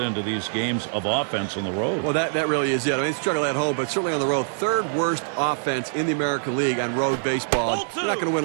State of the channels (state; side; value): silent; left; digital silence